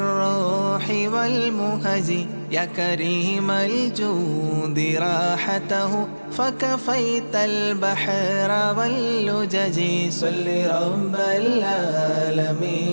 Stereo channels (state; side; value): inverted; both; correlation -1.00